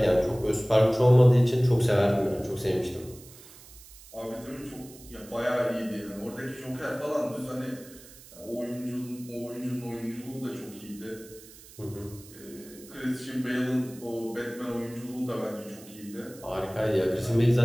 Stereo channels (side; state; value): right; noise; hiss, 20 dB below the sound